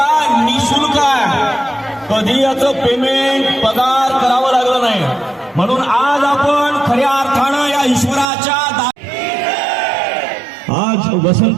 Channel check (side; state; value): left; drops out; at 8.2 s